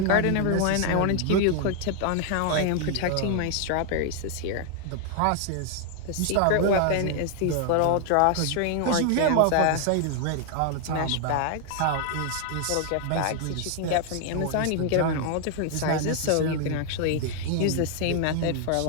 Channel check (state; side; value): different; both; correlation 0.00